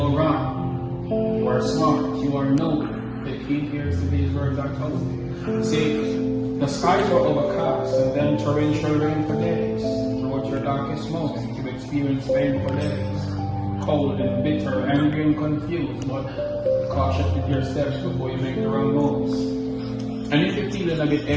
wrong. You are smart. You are noble. The key here is to these words I told you. See, the skies were overcast and then torrential rain for days. Throughout your darkest moment, you experience pain for days. Cold and bitter, angry and confused, but cautious with your steps before you make the wrong moves. And if you're feeling a bit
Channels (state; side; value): identical; both; correlation 1.00